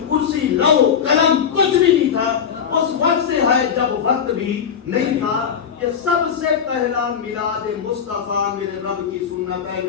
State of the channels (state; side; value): quieter; right; 7.5 dB